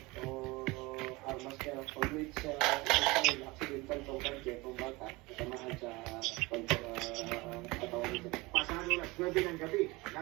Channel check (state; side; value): quieter; left; 23.1 dB